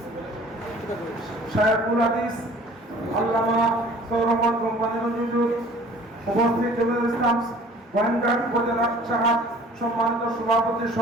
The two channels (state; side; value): normal; both; correlation 0.50